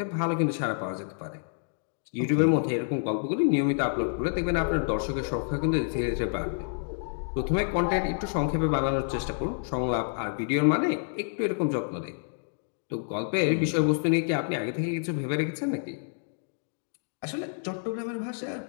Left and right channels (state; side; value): silent; right; digital silence